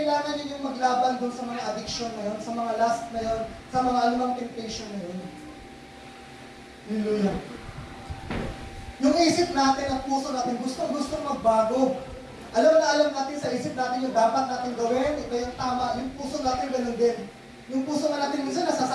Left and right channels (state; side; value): identical; both; correlation 1.00